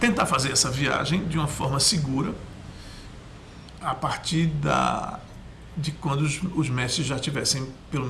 tentar fazer essa viagem de uma forma segura a partir de quando os mestres já tivessem pelo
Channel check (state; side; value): identical; both; correlation 1.00